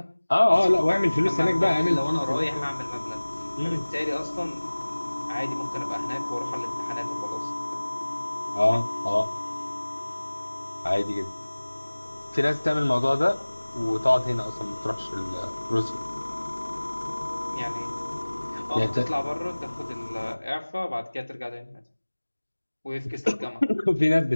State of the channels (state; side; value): inverted; both; correlation -1.00